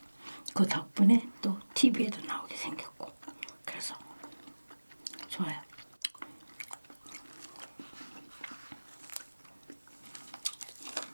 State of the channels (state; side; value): inverted; both; correlation -1.00